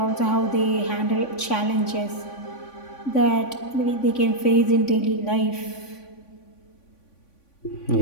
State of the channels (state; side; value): late; right; 3.5 ms